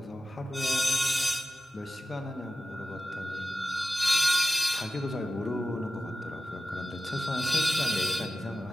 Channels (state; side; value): normal; both; correlation 0.95